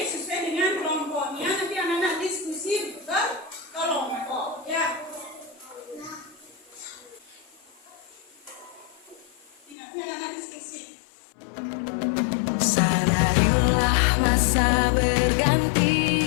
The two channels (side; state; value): right; drops out; at 9.8 s